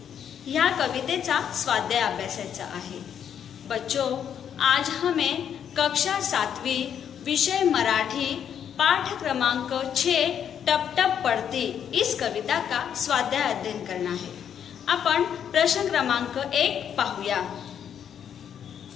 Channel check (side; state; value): right; quieter; 8.7 dB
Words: या कवितेचा स्वाध्याय अभ्यासायचा आहे। बच्चों, आज हमें कक्षा 7वी विषय मराठी पाठ क्रमांक 6 टप टप पड़ती इस कविता का स्वाध्याय अध्ययन करना है। आपण प्रश्न क्रमांक 1 पाहूया।